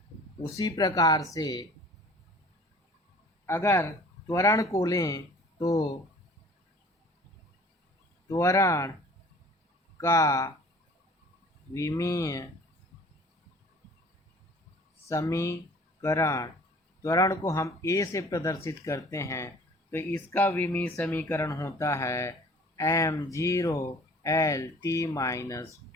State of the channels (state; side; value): normal; both; correlation 0.49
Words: उसी प्रकार से अगर त्वरण को लें तो त्वरण का विमीय समीकरण, त्वरण को हम a से प्रदर्शित करते हैं तो इसका विमीय समीकरण होता है m0 l